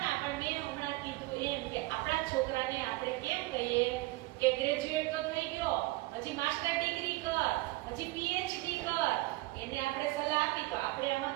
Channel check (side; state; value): left; quieter; 20.7 dB